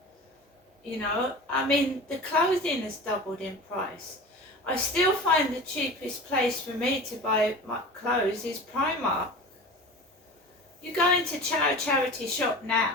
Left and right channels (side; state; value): both; normal; correlation 0.35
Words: You know, I mean, the clothing has doubled in price. I still find the cheapest place for me to buy my clothes is Primark. You go into a charity shop now,